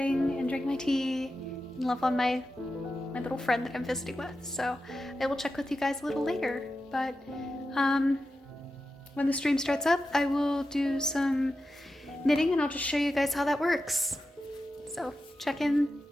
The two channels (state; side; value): normal; both; correlation 0.91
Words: and drink my tea and love on my little friend that I'm visiting with. So I will check with you guys a little later. But when the stream starts up, I will do some knitting and I'll just show you guys how that works. So check in